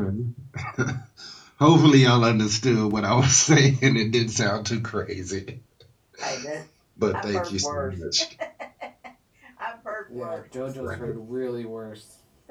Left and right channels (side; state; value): both; identical; correlation 1.00